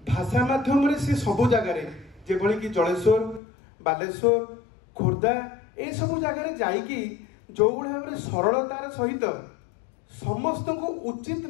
भाषा माध्यम से सबु जगार जेभली कि जलेश्वर बालेश्वर खोर्धा ये सब जगार जाइकी जो भाव में सरलतार सहित समस्त को उचित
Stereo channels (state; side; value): drops out; right; at 3.4 s